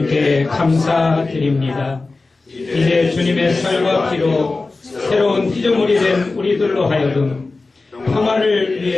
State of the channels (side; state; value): right; quieter; 3.6 dB